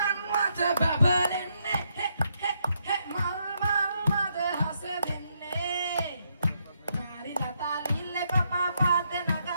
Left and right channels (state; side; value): inverted; both; correlation -0.77